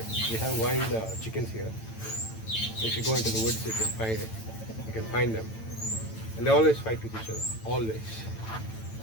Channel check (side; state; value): right; late; 9.0 ms